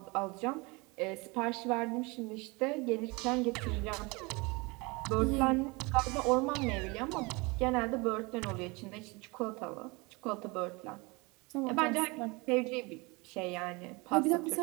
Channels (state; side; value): quieter; left; 26.4 dB